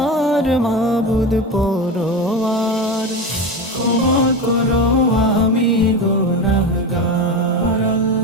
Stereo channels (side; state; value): both; normal; correlation 0.22